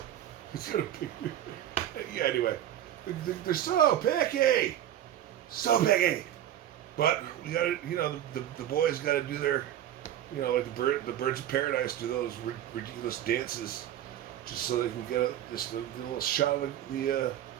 got a big, yeah, anyway. They're so picky. So picky. But we gotta, the boys gotta do their, like the birds of paradise do those ridiculous dances, just so they can get a little shot of the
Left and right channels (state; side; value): quieter; left; 11.6 dB